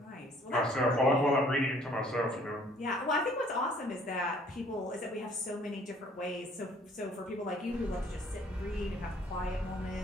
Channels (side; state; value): both; normal; correlation 0.58